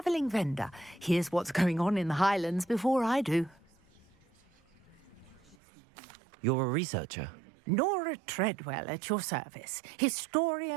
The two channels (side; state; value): left; drops out; at 5.6 s